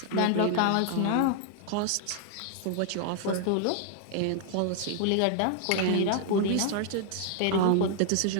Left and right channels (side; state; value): both; different; correlation 0.00